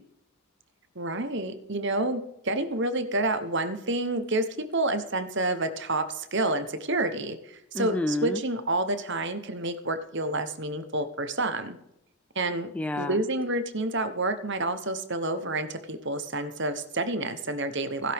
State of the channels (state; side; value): normal; both; correlation -0.10